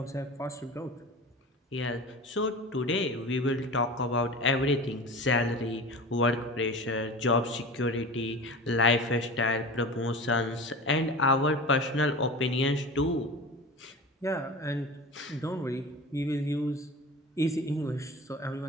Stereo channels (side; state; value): both; normal; correlation 0.33